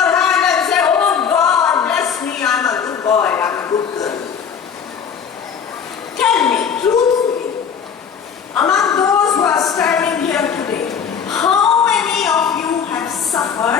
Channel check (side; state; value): right; quieter; 7.2 dB